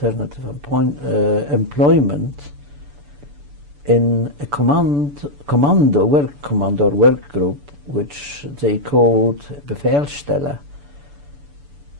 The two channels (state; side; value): late; left; 6.9 ms